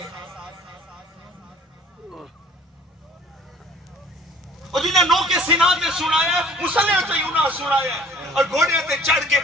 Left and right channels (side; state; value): both; normal; correlation 0.52